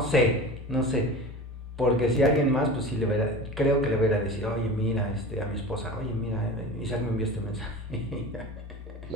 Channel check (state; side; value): normal; both; correlation 0.34